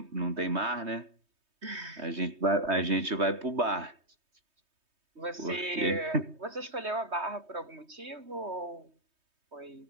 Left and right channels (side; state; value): left; late; 3.2 ms